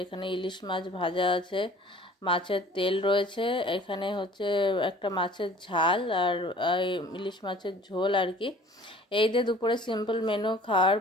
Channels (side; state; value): both; normal; correlation 0.50